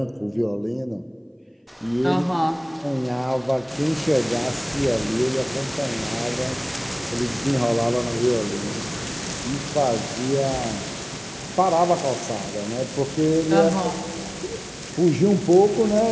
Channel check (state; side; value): identical; both; correlation 1.00